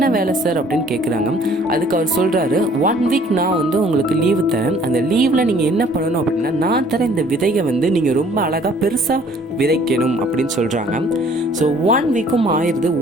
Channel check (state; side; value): normal; both; correlation 0.57